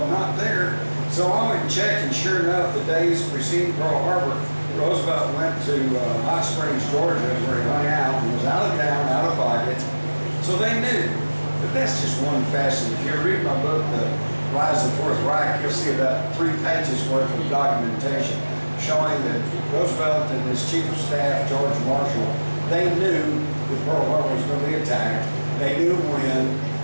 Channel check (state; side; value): inverted; both; correlation -1.00